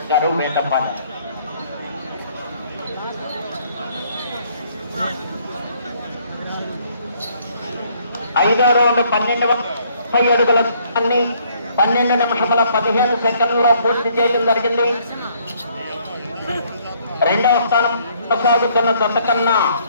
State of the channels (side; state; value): both; inverted; correlation -0.65